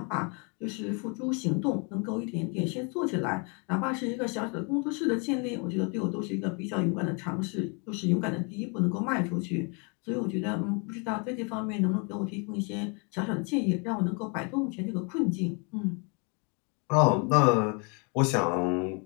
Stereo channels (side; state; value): right; quieter; 34.1 dB